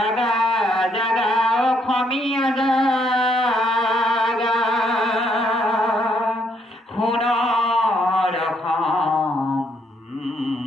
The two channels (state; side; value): normal; both; correlation 0.72